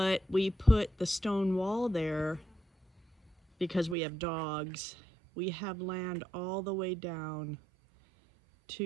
we put the stone wall there because we have dogs. We have land all the way down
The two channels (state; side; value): drops out; left; at 4.0 s